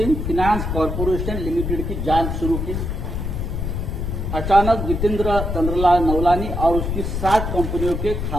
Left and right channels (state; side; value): noise; left; rumble, 3 dB below the sound